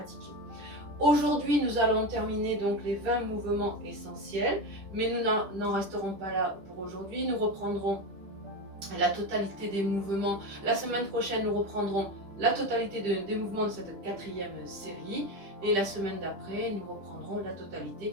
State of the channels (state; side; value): late; left; 10 ms